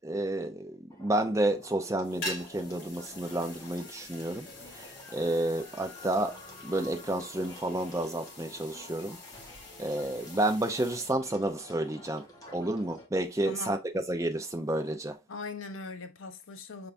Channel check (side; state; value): both; normal; correlation 0.66